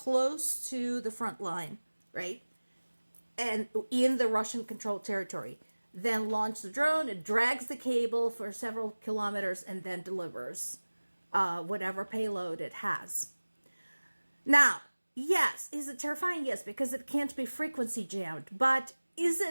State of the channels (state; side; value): inverted; both; correlation -1.00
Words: to the front line, right? And in the Russian controlled territory. Then launch the drone, it drags the cable for several kilometers and then delivers whatever payload it has. Now, yes, is it terrifying? Yes, because it can't be frequency jammed. But is